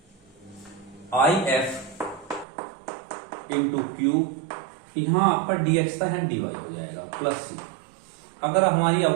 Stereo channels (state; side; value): drops out; left; at 2.5 s